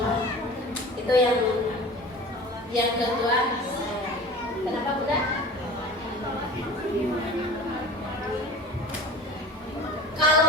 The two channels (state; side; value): normal; both; correlation 0.39